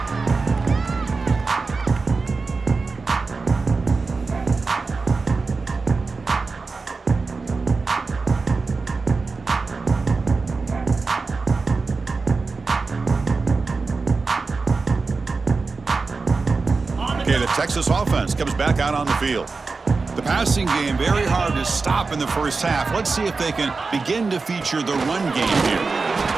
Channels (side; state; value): left; quieter; 4.2 dB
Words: Okay, the Texas offense comes back out on the field. The passing game, very hard to stop in the first half. Let's see if they can begin to feature the run game here.